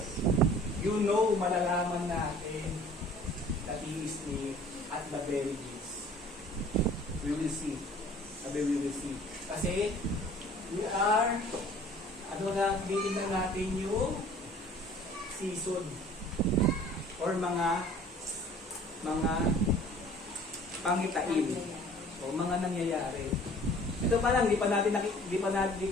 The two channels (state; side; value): normal; both; correlation 0.50